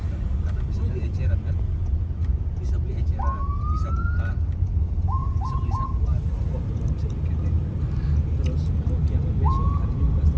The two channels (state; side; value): identical; both; correlation 1.00